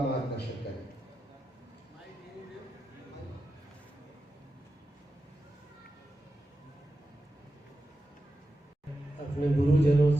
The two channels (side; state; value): both; normal; correlation 0.91